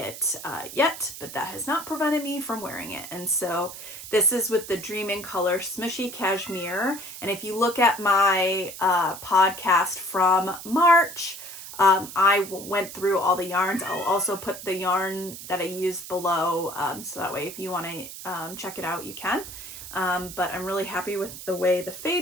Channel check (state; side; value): noise; right; hiss, 12 dB below the sound